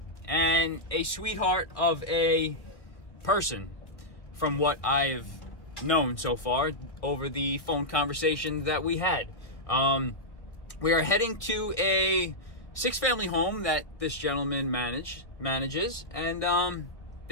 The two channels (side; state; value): right; late; 1.3 ms